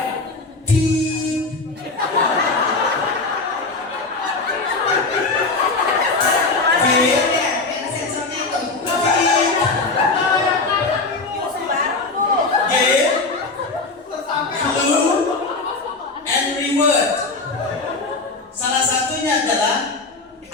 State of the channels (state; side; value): quieter; right; 3.7 dB